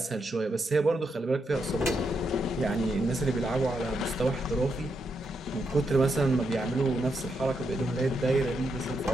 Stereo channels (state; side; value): normal; both; correlation 0.82